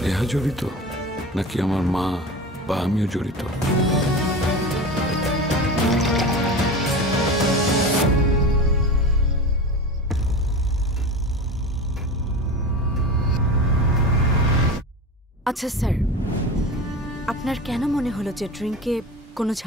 নেহা জড়িত, নাকি আমার মা বা আমিও জড়িত? আচ্ছা স্যার, আপনার কেন মনে হলো যে ড্রিঙ্কে কোনো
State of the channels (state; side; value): normal; both; correlation 0.30